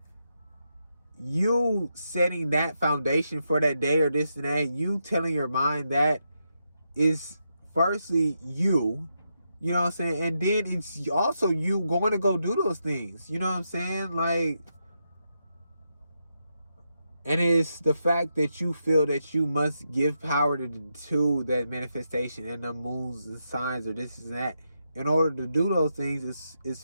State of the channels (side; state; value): both; inverted; correlation -0.83